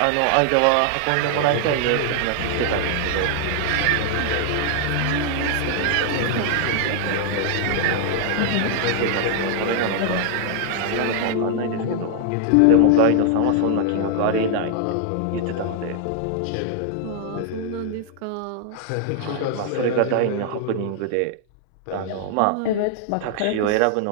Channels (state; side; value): different; both; correlation 0.00